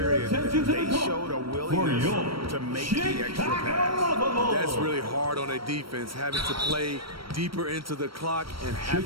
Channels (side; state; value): left; late; 0.75 ms